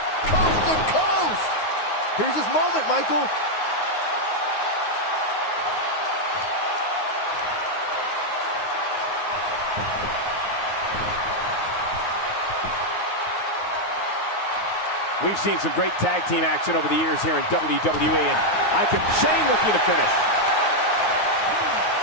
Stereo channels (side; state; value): right; late; 9.5 ms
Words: Coast to coast. Here's his moment, Michael. We've seen some great tag team action over the years here in WWE, and Shane looking to finish.